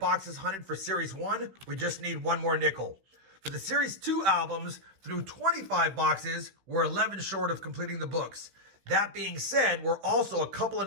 hunted for Series 1, we just need one more nickel. For the Series 2 albums, through 25 boxes, we're 11 short of completing the books. That being said, we're also a couple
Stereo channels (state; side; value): late; left; 16 ms